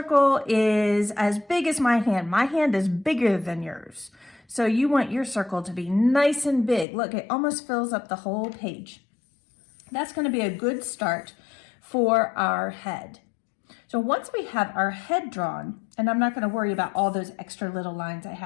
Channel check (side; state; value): right; drops out; at 6.9 s